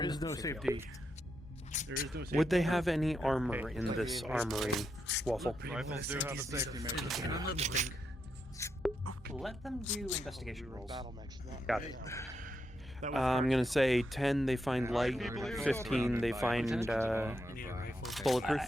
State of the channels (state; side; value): normal; both; correlation 0.83